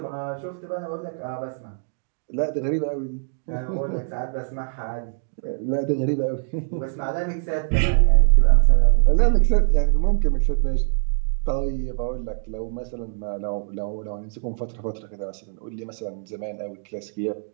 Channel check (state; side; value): silent; left; digital silence